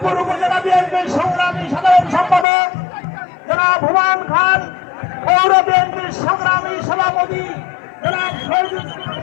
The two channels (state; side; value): drops out; right; at 2.5 s